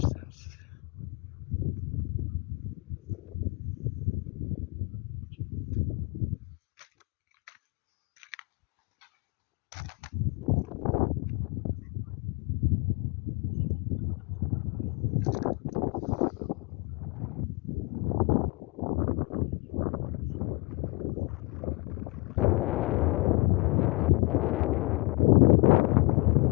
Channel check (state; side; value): quieter; right; 25.9 dB